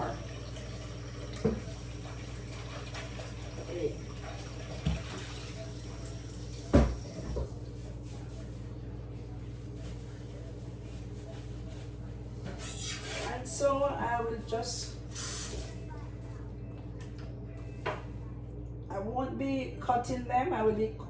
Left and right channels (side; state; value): both; identical; correlation 1.00